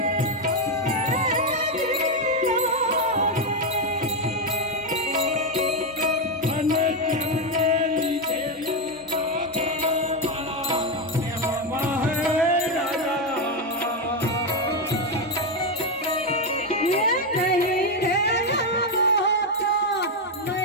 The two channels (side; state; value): both; normal; correlation 0.06